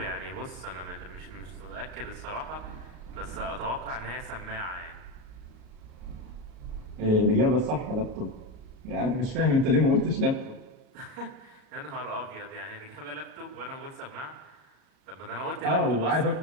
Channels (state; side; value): late; left; 38 ms